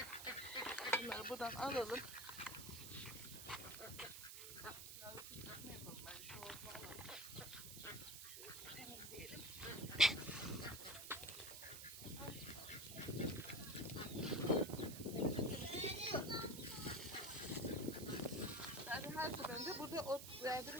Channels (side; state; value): right; noise; hiss, 9 dB below the sound